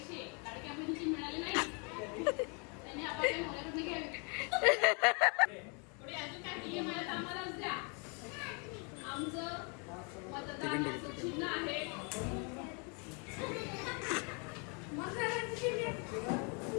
लाडक्या बहिणीचे मिळाले नाही त्यांनी आपल्या मुलाकडनं घ्यावे. पुढे अजून काय नियम आहे आम्हालाच द्या. आमचं मतदानाचं चिन्ह आहे.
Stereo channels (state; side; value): quieter; right; 35.5 dB